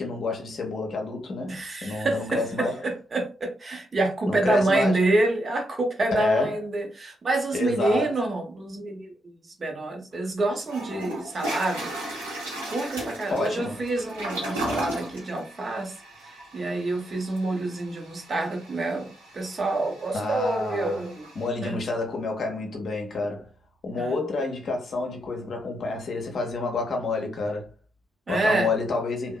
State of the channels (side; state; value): both; normal; correlation 0.79